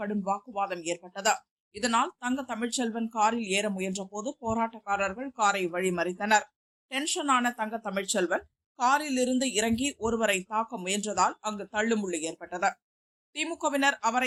வாக்குவாதம் ஏற்பட்டது. இதனால் தங்க தமிழ்ச்செல்வன் காரில் ஏற முயன்ற போது போராட்டக்காரர்கள் காரை வழிமறித்தனர். டென்ஷனான தங்க தமிழ்ச்செல்வன் காரில் இருந்து இறங்கி ஒருவரை தாக்க முயன்றதால் அங்கு தள்ளுமுள்ளு ஏற்பட்டது. திமுகவினர்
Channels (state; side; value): identical; both; correlation 1.00